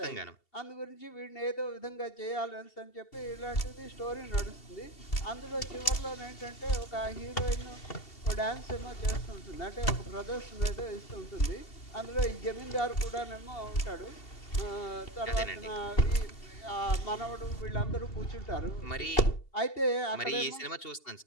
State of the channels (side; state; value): right; late; 2.7 ms